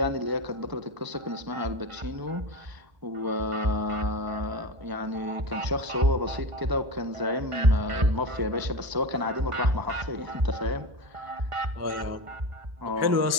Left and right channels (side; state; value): left; late; 1.0 ms